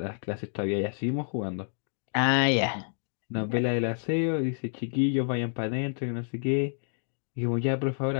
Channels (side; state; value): right; silent; digital silence